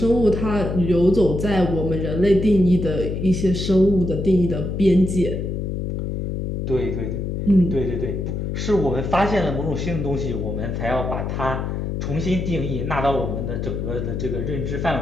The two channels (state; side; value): noise; left; hum, 3 dB below the sound